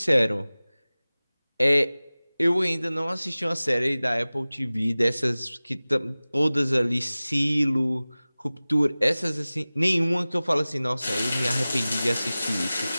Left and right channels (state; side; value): inverted; both; correlation -0.98